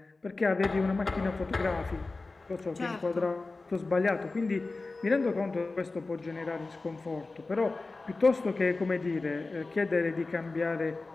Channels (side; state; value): right; quieter; 3.5 dB